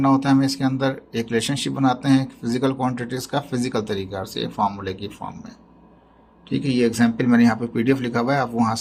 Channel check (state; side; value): identical; both; correlation 1.00